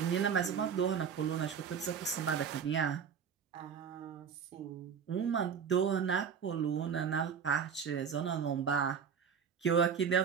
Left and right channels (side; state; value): left; quieter; 7.0 dB